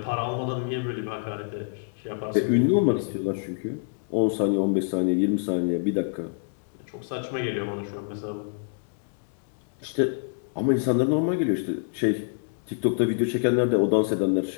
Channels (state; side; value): silent; right; digital silence